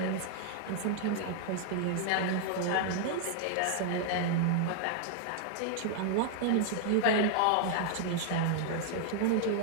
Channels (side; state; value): both; different; correlation 0.00